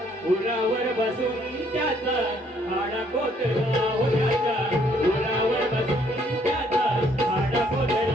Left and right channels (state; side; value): normal; both; correlation 0.66